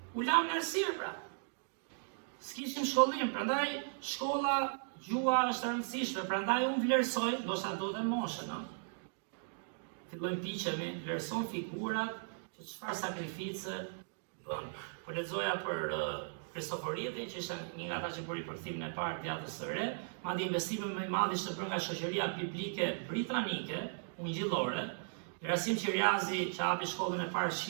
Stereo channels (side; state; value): left; silent; digital silence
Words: u lam në errësirë pra. S'kishim shkollim, prandaj shkolla, gjua është e rëndësishme, prandaj unë vlerësoj, ndoshta do të moshën, fillojmë piqemi, vlerëson figurat që çfarë sakrifice bën. Po lexoja për Kristoforidhin, që ishte një nga ata që bëri përkthimin e parë të Vjatës së Re, madje investimi më i madh ishte bërë nga shoqëria biblike britanike, ungjillore. Gerasim Qiriazi, që hapi shkollën e parë